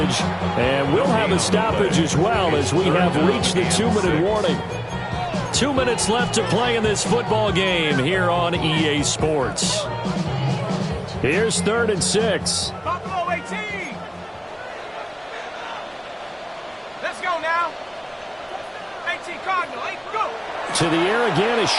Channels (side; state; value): both; identical; correlation 1.00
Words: And we'll have a stoppage as well as we have reached the 2-minute warning. 2 minutes left to play in this football game here on EA Sports. Here's 3rd and 6. Buffalo 18. Let's go now. 18 Cardinal, 8, go. To the air again is